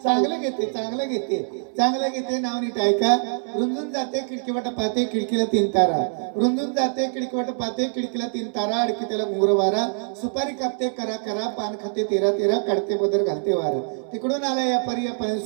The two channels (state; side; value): silent; left; 60 dB below the other